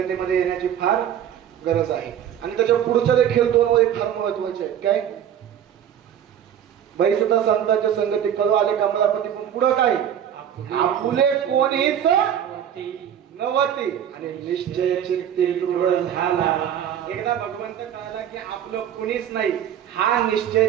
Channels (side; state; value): left; quieter; 9.7 dB